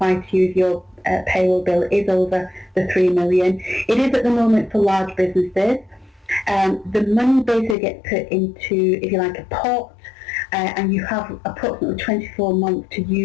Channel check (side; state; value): right; drops out; at 7.8 s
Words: to you, if your payroll bill is over the 3 million. It is at the moment for large businesses. The money basically gets put into, if you like, a pot, and you have approximately 24 months to